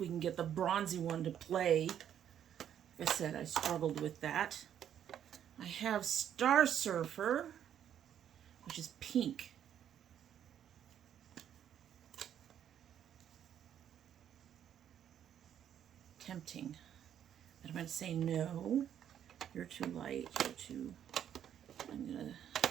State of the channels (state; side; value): quieter; left; 9.8 dB